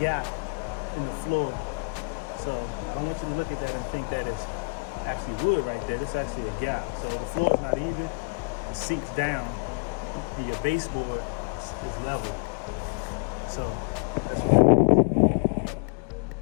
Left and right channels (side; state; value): right; quieter; 34.4 dB